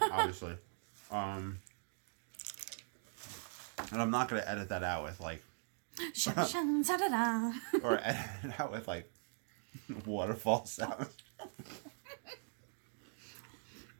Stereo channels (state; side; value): silent; left; 50 dB below the other